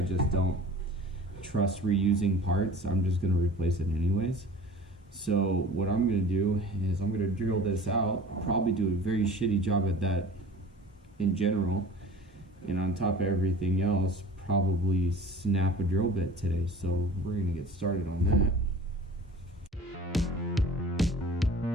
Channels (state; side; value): normal; both; correlation 0.43